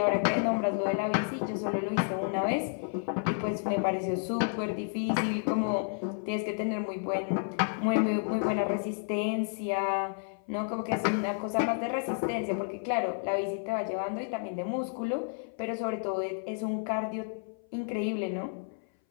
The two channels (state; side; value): silent; right; 57 dB below the other